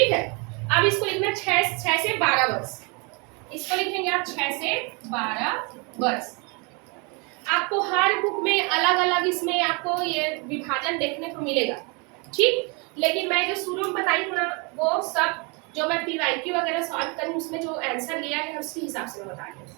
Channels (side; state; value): left; quieter; 31.6 dB